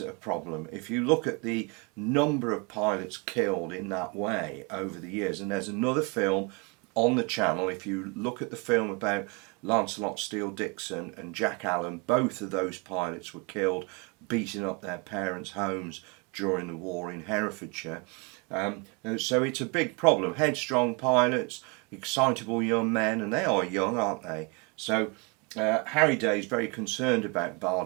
a problem. If you look at the number of pilots killed in that way over the years, and there's another film on the channel, if you look at the film about Lancelot Steele Dixon and Jack Allen, both of those pilots were killed beating up their parents' homes during the war in Herefordshire. So it's a big problem. Headstrong pilots, excitable young men, and they are young, aren't they? So Harry Day is very concerned about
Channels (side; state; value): left; quieter; 31.2 dB